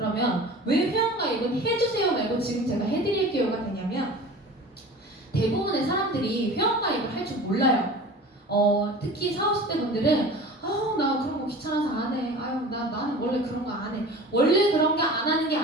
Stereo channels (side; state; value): both; normal; correlation 0.38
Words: 왜 회원가입은 해주세요 말고 지금 제가 해드릴게요가 되냐면 대부분의 사람들이 회원가입을 할 줄 몰라요. 특히 40, 50대 분들은 나 그런 거 귀찮아서 안 해. 나는 원래 그런 거 안 해. 원래 그런 거 안 하는 게